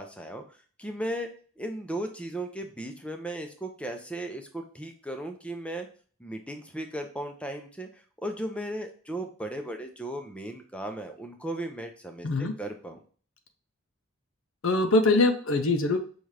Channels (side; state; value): both; normal; correlation 0.41